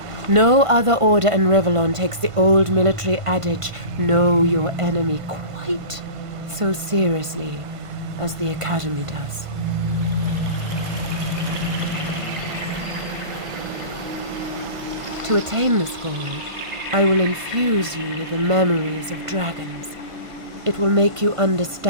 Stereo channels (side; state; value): left; late; 1.5 ms